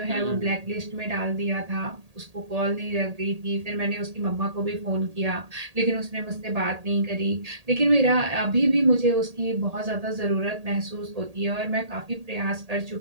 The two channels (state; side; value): late; left; 1.8 ms